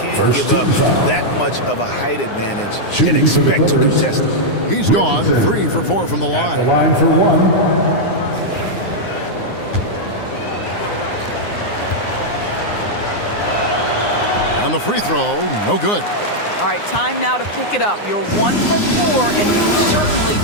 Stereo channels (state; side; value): late; right; 9.7 ms